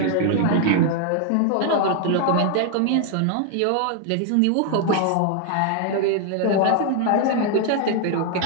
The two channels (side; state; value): both; different; correlation 0.00